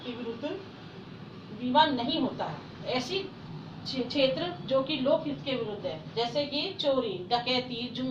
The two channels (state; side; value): identical; both; correlation 1.00